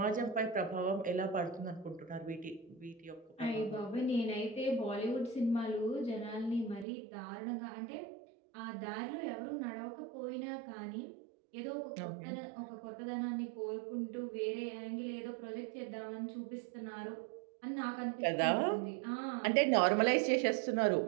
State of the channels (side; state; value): left; drops out; at 6.9 s